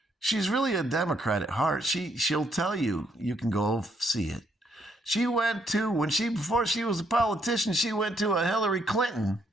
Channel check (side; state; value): both; normal; correlation 0.73